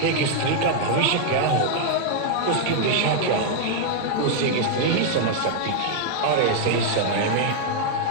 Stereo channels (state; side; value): different; both; correlation 0.00